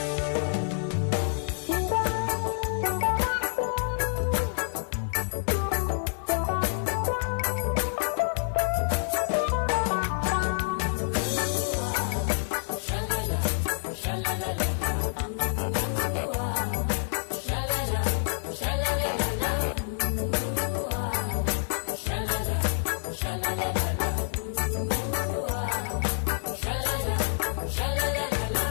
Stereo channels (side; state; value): right; silent; 55 dB below the other